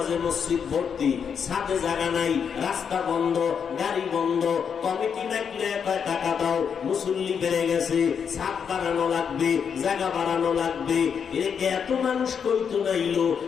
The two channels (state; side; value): quieter; right; 7.0 dB